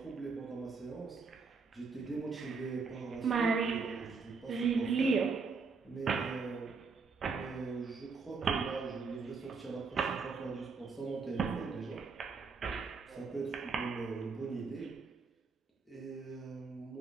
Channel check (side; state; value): left; quieter; 4.8 dB